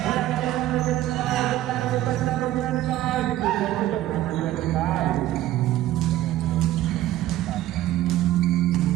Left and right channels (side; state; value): left; quieter; 14.3 dB